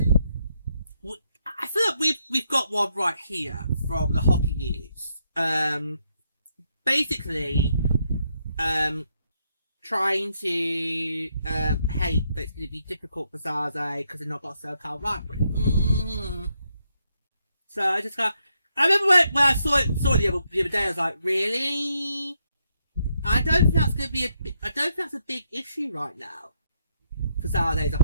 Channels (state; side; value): inverted; both; correlation -0.77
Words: I feel like we've got one right here from the hockey news. Basically, trying to hate that it's going to be difficult for San Jose because they've not got a SoCal rivalry. So I just got. I remember when I saw it the other day. I was like, really? I don't think that's going to be I don't think that's a big issue right now for San Jose as a